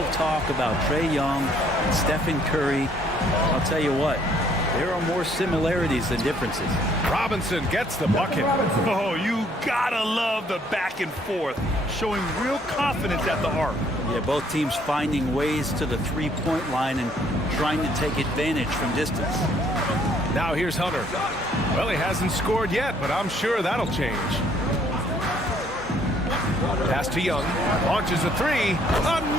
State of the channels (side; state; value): both; normal; correlation 0.64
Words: talk about Trae Young and Stephen Curry. I'll tell you what, there are more similarities than differences. Robinson gets the bucket. Oh, you gotta love the back and forth, showing real confidence at the arc. Yeah, both teams finding ways to the three-point line and trying to take advantage from distance. Now here's Hunter. Well, he hasn't scored yet, but I'm sure that'll change. Pass to Young. Launches a 3.